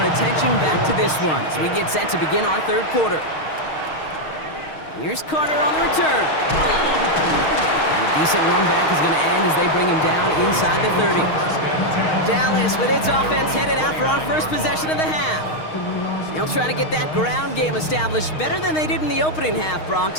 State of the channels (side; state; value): right; late; 6.4 ms